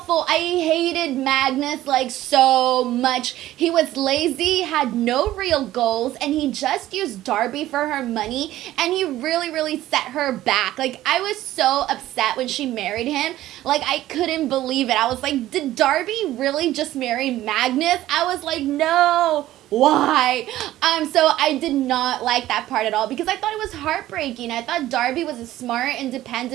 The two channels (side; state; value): left; quieter; 14.6 dB